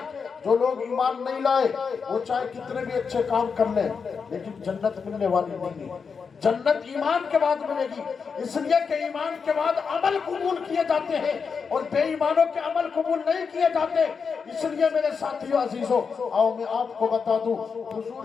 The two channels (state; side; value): quieter; right; 5.7 dB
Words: جو لوگ ایمان نہیں لائے وہ چاہے کتنے بھی اچھے کام کر لیں لیکن جنت ملنے والی نہیں ہے۔ جنت ایمان کے بعد ملے گی، اس لیے کہ ایمان کے بعد عمل قبول کیے جاتے ہیں اور بے ایمانوں کے عمل قبول نہیں کیے جاتے۔ اس لیے میرے ساتھیو عزیزو، آؤ میں آپ کو بتا دوں،